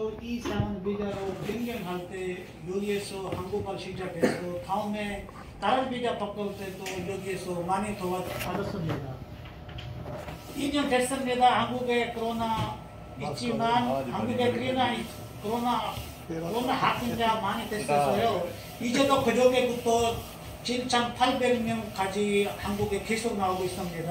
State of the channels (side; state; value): both; identical; correlation 1.00